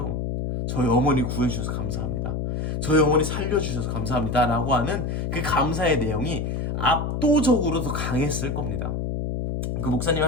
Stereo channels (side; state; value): left; noise; hum, 2 dB below the sound